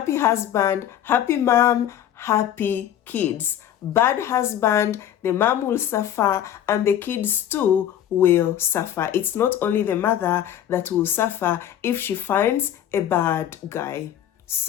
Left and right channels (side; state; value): right; quieter; 10.8 dB